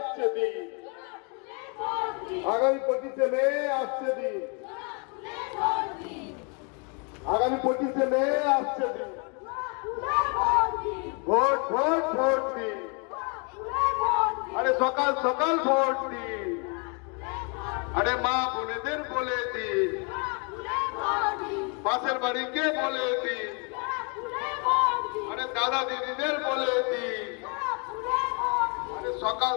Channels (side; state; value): right; quieter; 35.7 dB